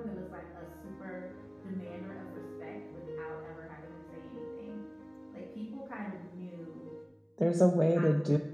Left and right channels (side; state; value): both; identical; correlation 1.00